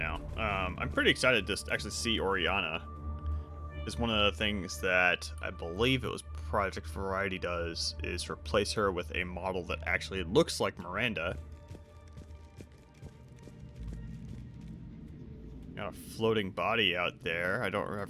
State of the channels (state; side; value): identical; both; correlation 1.00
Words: I'm pretty excited to actually see Oriana. It's one of the things that I believe it was Project Variety does, is replace her with a model that actually looks like Miranda. Got a floating body out there. I don't